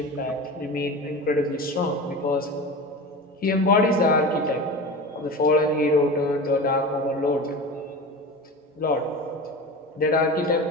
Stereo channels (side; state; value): both; normal; correlation 0.30